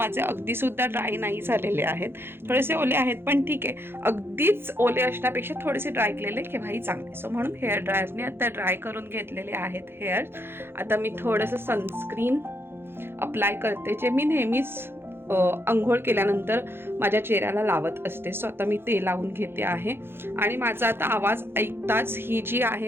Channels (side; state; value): left; late; 0.11 ms